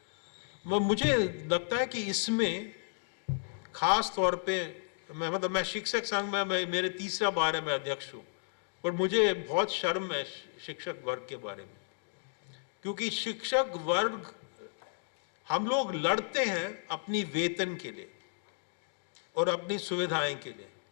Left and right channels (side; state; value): right; silent; digital silence